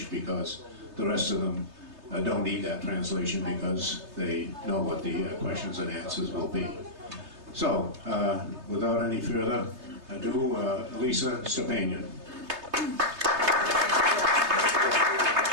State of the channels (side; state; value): left; late; 3.3 ms